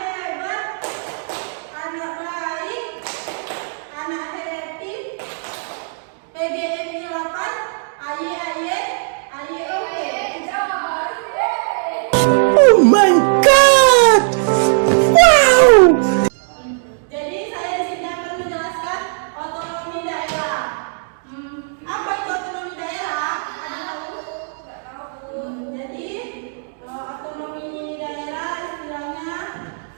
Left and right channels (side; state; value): left; silent; digital silence